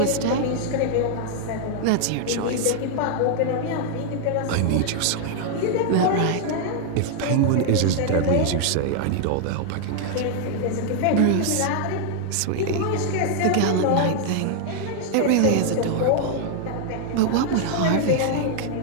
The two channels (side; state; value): both; different; correlation 0.00